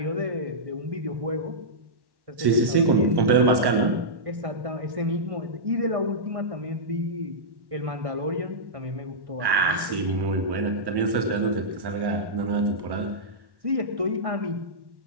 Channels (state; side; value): late; left; 1.1 ms